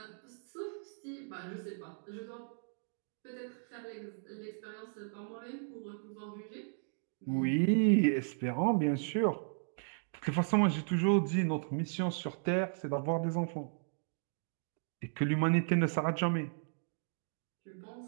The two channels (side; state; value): left; silent; digital silence